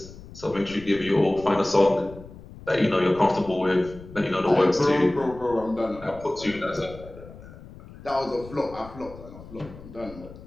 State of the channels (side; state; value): left; noise; rumble, 17 dB below the sound